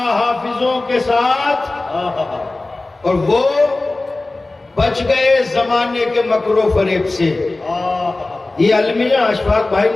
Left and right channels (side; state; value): right; quieter; 3.1 dB